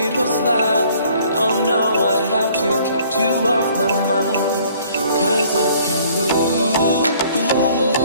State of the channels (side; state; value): both; inverted; correlation -0.58